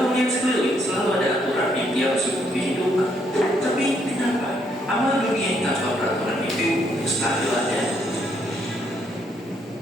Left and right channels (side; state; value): both; normal; correlation 0.72